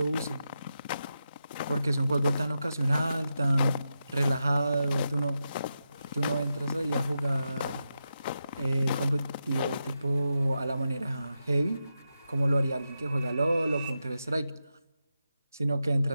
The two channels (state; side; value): inverted; both; correlation -0.88